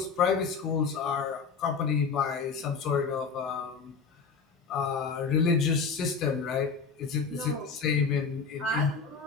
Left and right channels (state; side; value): quieter; right; 5.3 dB